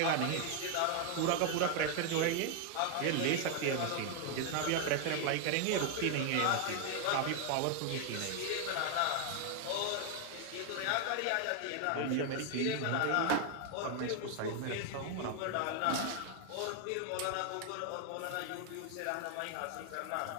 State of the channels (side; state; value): both; different; correlation 0.00